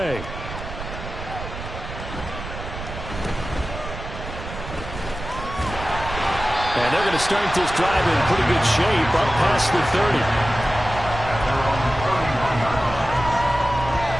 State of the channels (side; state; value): right; noise; rumble, 9 dB below the sound